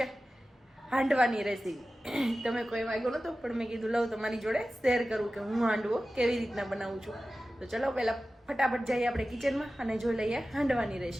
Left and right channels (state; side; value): normal; both; correlation 0.95